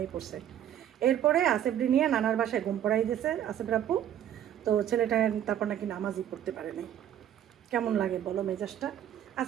পড়ছে। এরপরে আসেফটি নিয়ে নানার বাসায় ঘুম পড়াই দিয়েছে আসেফের আব্বু। তো ছেলেটা তারপর নাকি নামাজই পড়তে পারে নাই। কেমন লাগে বলো মেজাজটা?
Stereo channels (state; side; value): quieter; left; 10.6 dB